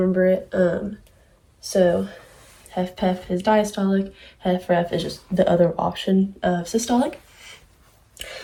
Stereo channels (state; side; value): identical; both; correlation 1.00